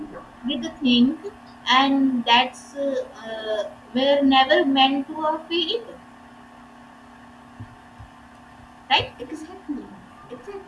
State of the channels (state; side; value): identical; both; correlation 1.00